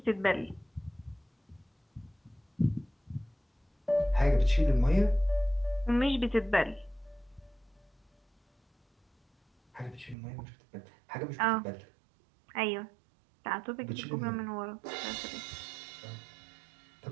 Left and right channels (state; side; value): drops out; left; at 10.2 s